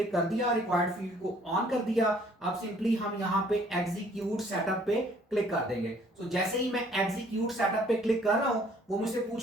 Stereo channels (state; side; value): normal; both; correlation 0.60